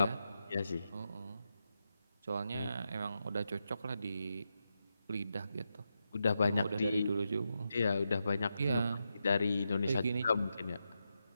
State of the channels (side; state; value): both; inverted; correlation -0.86